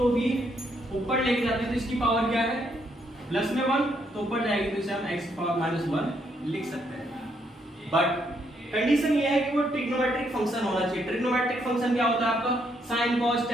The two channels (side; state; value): both; normal; correlation 0.74